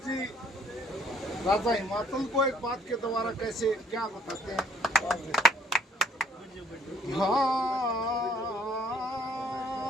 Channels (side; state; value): both; normal; correlation 0.62